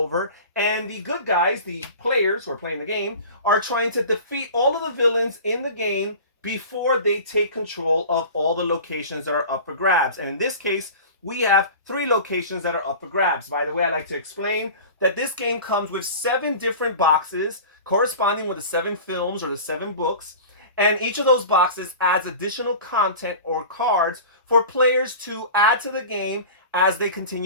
and the good guys, the players who are playing the game, are trying to defeat all of the villains in the game before they take control of all the locations that are up for grabs. And in this case, we have 3 locations that are up for grabs. By the way, I like to explain that this game comes with 7 different boxes corresponding with the 7 films or the 7 books. And each of those boxes adds additional content or cards for players to add to the game as they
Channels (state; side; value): inverted; both; correlation -0.37